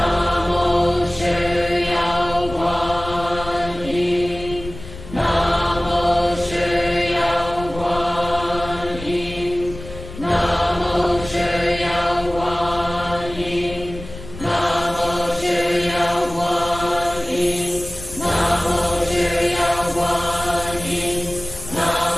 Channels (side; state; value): left; noise; rumble, 13 dB below the sound